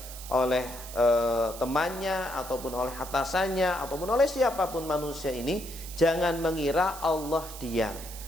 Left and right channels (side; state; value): right; noise; hiss, 13 dB below the sound